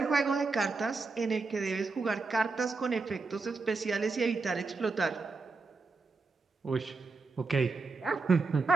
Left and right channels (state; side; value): quieter; left; 4.0 dB